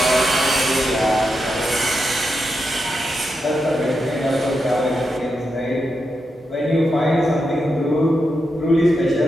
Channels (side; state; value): both; normal; correlation 0.86